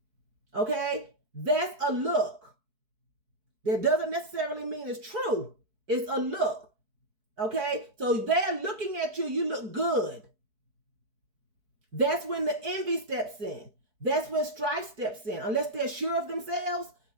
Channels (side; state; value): left; late; 4.7 ms